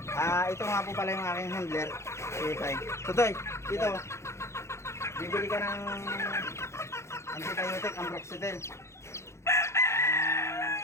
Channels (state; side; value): late; right; 0.13 ms